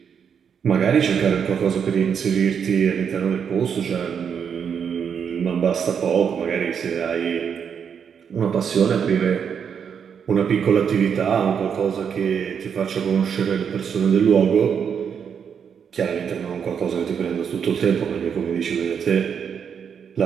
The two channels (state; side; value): quieter; left; 7.3 dB